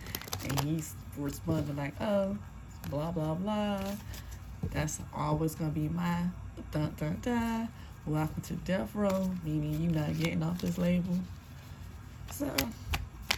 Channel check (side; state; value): both; identical; correlation 1.00